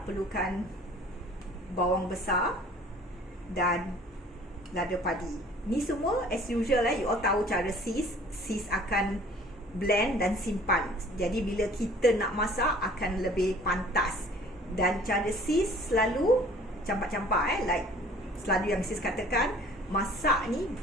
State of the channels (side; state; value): both; normal; correlation 0.51